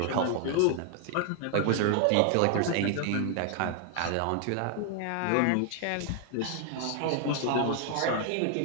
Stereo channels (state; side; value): different; both; correlation 0.00